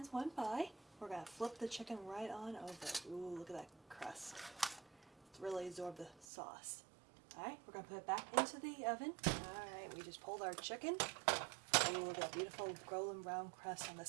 went by. We're going to flip the chicken right on over. Ooh, look at that crust. It's really absorbed the sauce. Alright, we're going to put it back into the oven. Alright, we just pulled our chicken. Ooh, look at that beautiful golden brown crust on the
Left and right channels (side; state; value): left; drops out; at 6.2 s